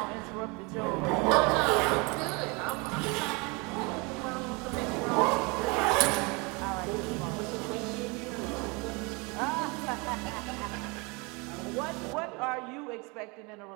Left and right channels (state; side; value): quieter; left; 28.5 dB